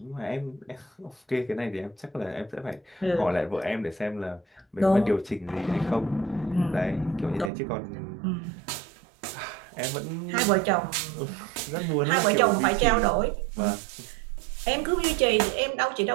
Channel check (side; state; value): left; drops out; at 7.5 s